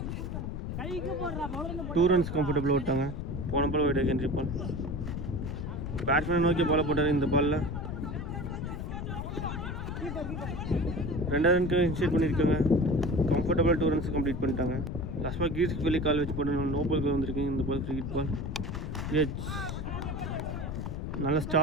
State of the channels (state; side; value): noise; left; rumble, 5 dB below the sound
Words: 2 runs கம்ஃபர்டபுளாக விட்டாங்க. போன பால் வைட் ஹென்ரி பால். பேட்ஸ்மேனை நோக்கி பாலை போட்டார் இந்த பாலில். 2 ரனுக்கு இன்ஷியேட் பண்ணியிருக்காங்க. கம்ஃபர்டபுளாக 2 runs கம்ப்ளீட் பண்ணிட்டாங்க. லாஸ்ட் பால் கீர்ஸ்க்கு வெளியே கால் வச்சு போட்டு நோ பால் வந்திருக்கு. இந்த பால் ஃப்ரீ ஹிட் பால். எச் நல்ல